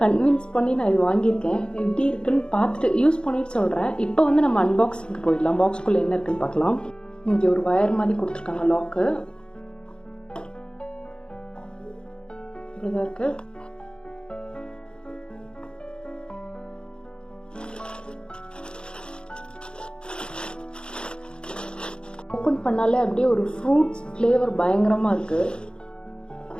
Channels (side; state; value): right; late; 0.051 ms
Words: கன்வின்ஸ் பண்ணி நான் இது வாங்கியிருக்கேன். எப்படி இருக்குன்னு பார்த்துட்டு யூஸ் பண்ணிட்டு சொல்கிறேன். இப்போ வந்து நம்ம அன்பாக்சிங்க்கு போயிடலாம். பாக்ஸ்குள்ளே என்ன இருக்குன்னு பார்க்கலாம். இங்கே ஒரு வயர் மாதிரி கொடுத்துருக்காங்க, லாக்கு. இப்படிதான் இருக்குது. ஓப்பன் பண்ணாலே அப்படியே ஒரு ஃப்ரூட்ஸ் ஃப்ளேவர் பயங்கரமாக இருக்குது.